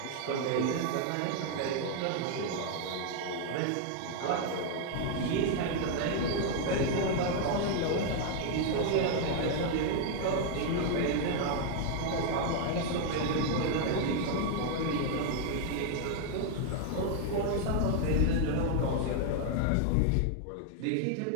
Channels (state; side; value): different; both; correlation 0.00